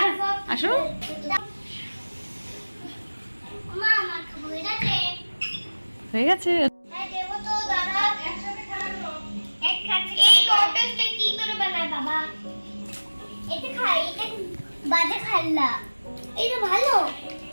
আসো। মা আমার খাবো এটাতে। হয়ে গেছে। হ্যাঁ দেব তো দাদা, একসাথে খাবো। এক খাচ্ছি। এই কটসটা কি করে বানায় বাবা? এটা খাই, এটা বাজে খাল্লা। এটা ভালো।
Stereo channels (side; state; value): both; inverted; correlation -1.00